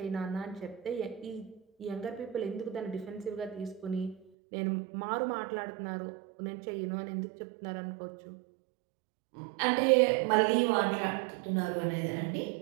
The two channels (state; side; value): drops out; left; at 4.2 s